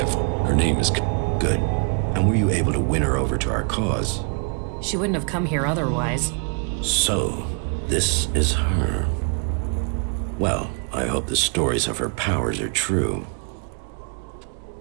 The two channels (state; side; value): quieter; left; 39.9 dB